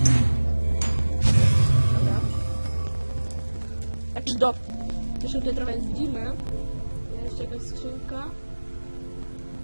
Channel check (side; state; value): both; inverted; correlation -1.00